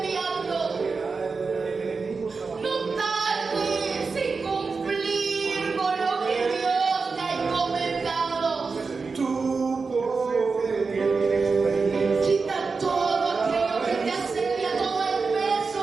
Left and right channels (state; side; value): quieter; left; 4.6 dB